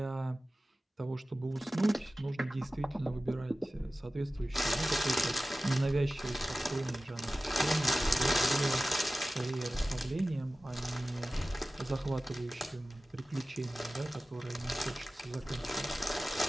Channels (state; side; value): normal; both; correlation 0.96